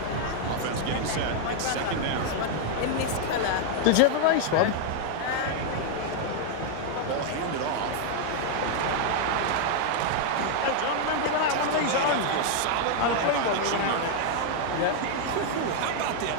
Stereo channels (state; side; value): different; both; correlation 0.00